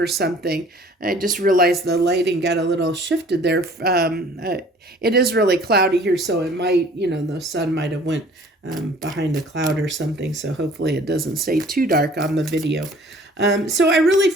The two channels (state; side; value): normal; both; correlation 0.52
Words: something. I just realized the lighting got a little shifted there. It is really cloudy here, so it might, you know, the sun might have went behind a cloud or something. So hopefully it doesn't stay too dark on the video. So I really